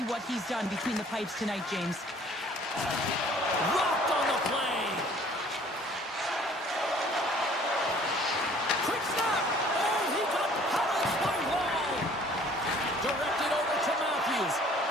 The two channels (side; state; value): both; normal; correlation 0.54